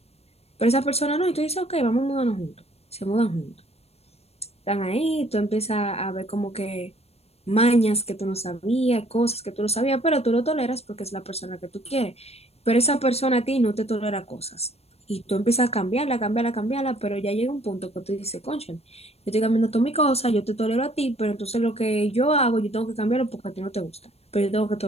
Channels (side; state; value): right; late; 0.30 ms